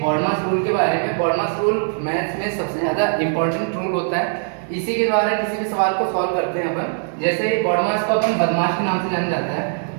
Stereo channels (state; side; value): silent; left; digital silence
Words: बॉडमास रूल के बारे में। बॉडमास रूल मैथ्स में सबसे ज़्यादा इंपॉर्टेंट रूल होता है। इसी के द्वारा किसी भी सवाल को सॉल्व करते हैं अपन। जैसे बॉडमास को अपन बदमाश के नाम से जाना जाता है,